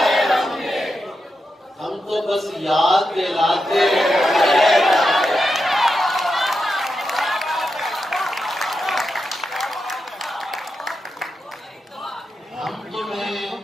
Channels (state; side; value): normal; both; correlation 0.88